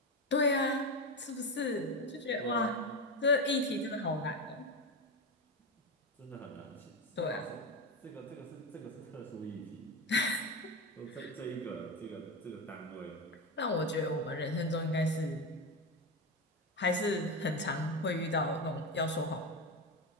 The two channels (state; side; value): normal; both; correlation 0.15